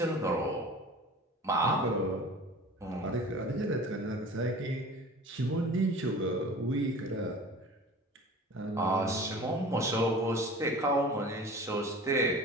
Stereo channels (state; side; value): normal; both; correlation 0.40